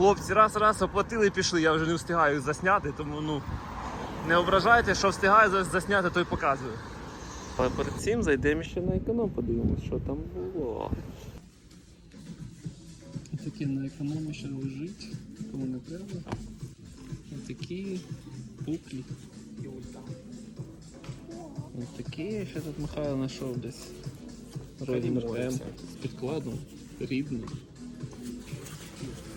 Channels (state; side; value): identical; both; correlation 1.00